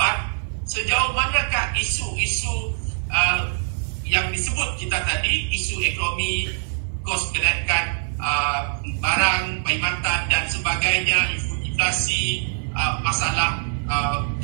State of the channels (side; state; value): left; silent; 57 dB below the other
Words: sejauh manakah isu-isu yang disebut kita tadi, isu ekonomi, kos kenaikan barang, perkhidmatan dan sebagainya, inflasi, masalah